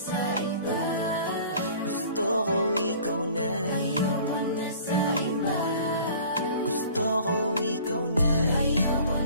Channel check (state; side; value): inverted; both; correlation -0.48